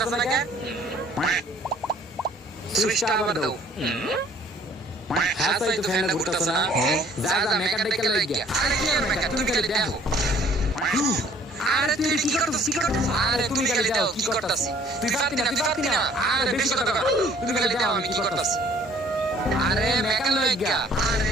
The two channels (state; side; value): normal; both; correlation 0.57